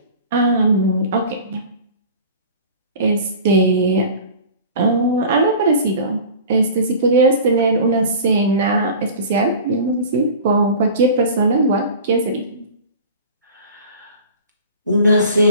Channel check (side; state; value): both; inverted; correlation -0.39